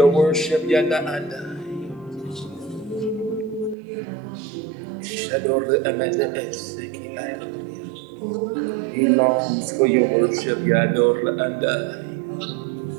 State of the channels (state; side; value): drops out; left; at 3.8 s